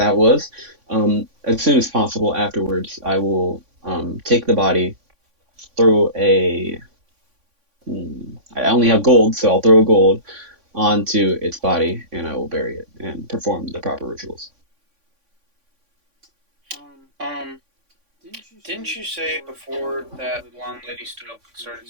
was. As soon as possible afterwards, I will take the body, throw a. I only have gold, so I'll throw a gold onto its body, and I will bury it and perform the proper rituals. Didn't you say before that blonde lady stood up and started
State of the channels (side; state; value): left; late; 3.5 ms